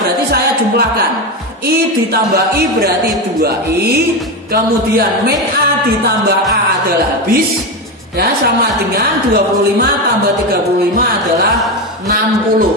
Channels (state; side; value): normal; both; correlation 0.15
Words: saya jumlahkan. I ditambah I berarti 2I, kemudian min A ditambah A adalah habis, ya, sama dengan 25 tambah 35 adalah